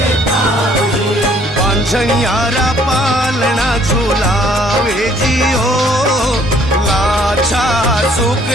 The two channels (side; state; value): both; normal; correlation 0.61